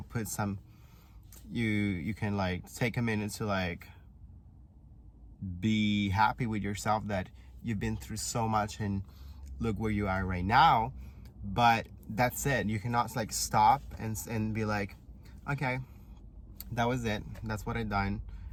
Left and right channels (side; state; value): both; identical; correlation 1.00